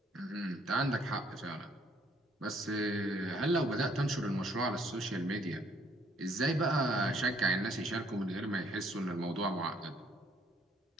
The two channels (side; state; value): both; normal; correlation 0.65